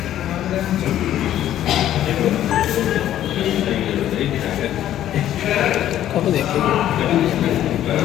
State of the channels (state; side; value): quieter; right; 12.0 dB